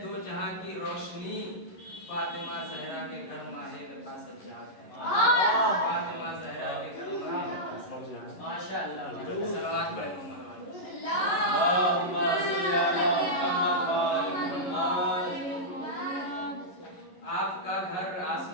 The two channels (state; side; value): late; right; 11 ms